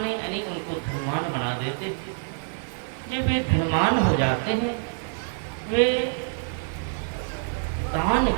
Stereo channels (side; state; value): left; silent; 61 dB below the other